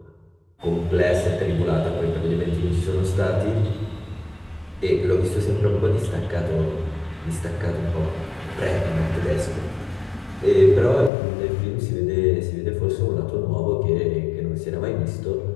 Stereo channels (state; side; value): drops out; right; at 11.1 s